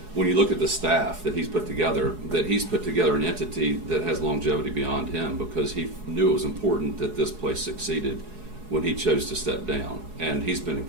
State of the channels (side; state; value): left; late; 4.8 ms